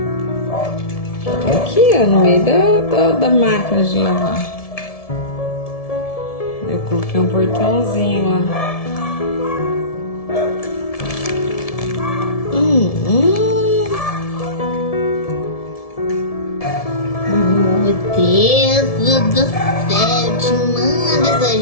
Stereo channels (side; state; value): right; late; 1.7 ms